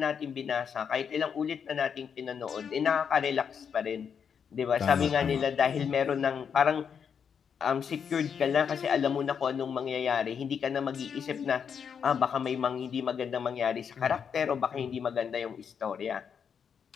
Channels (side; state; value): right; quieter; 7.1 dB